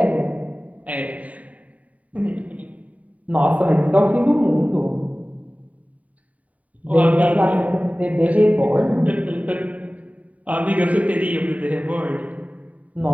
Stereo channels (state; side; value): late; left; 0.070 ms